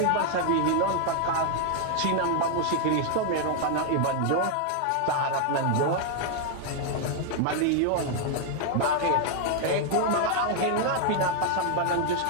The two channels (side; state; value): both; different; correlation 0.00